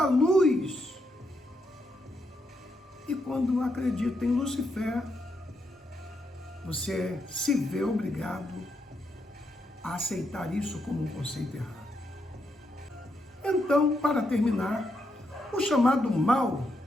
luz. E quando acredita em Lúcifer, você se vê obrigado a aceitar isso como um conceito errado. Então, para terminar, o chamado mal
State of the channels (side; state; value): both; normal; correlation 0.80